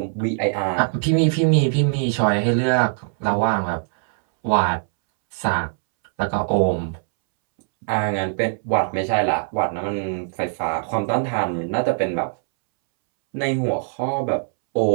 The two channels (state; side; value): silent; left; 65 dB below the other